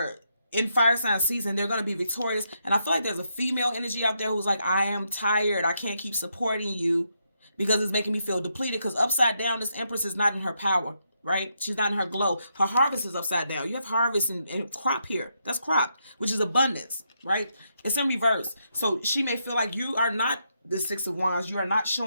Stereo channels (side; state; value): both; inverted; correlation -0.80